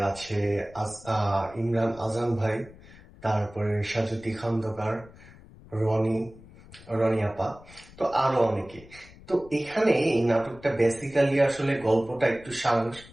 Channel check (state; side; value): noise; left; rumble, 21 dB below the sound